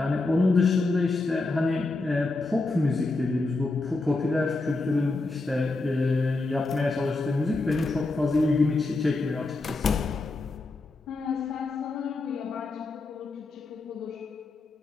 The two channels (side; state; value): right; quieter; 3.3 dB